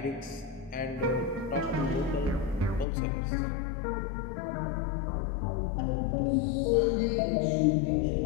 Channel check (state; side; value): drops out; right; at 2.9 s